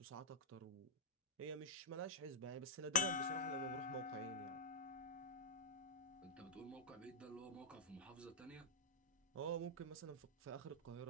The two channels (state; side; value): normal; both; correlation -0.07